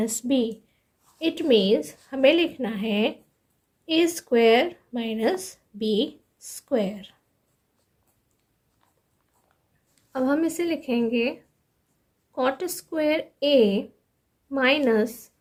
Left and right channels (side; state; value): both; identical; correlation 1.00